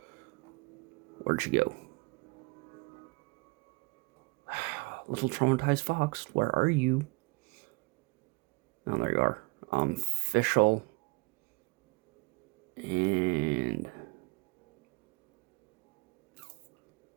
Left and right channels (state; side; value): quieter; left; 28.4 dB